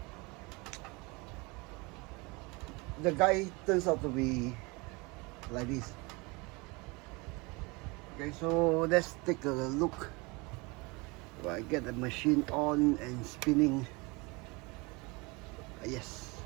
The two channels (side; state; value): left; quieter; 26.5 dB